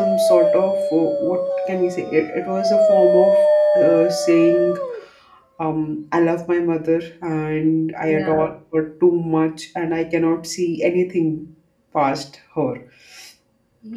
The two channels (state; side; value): identical; both; correlation 1.00